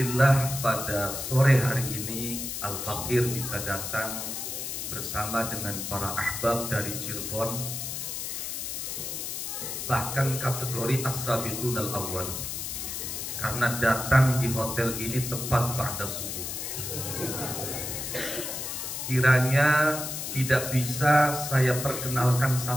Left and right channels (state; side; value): noise; left; hiss, 5 dB below the sound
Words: pada sore hari ini Al-Faqir bisa datang bersama dengan para ahbab dari Cirebon, bahkan kategori as-sabiqun al-awwal, karena datang di hotel ini tepat pada subuh. Kiranya tidak bisa saya perkenalkan